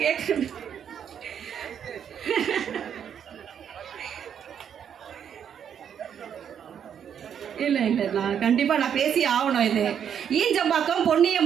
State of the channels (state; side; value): quieter; left; 8.4 dB